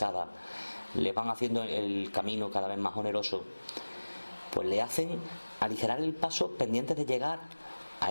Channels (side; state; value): both; inverted; correlation -1.00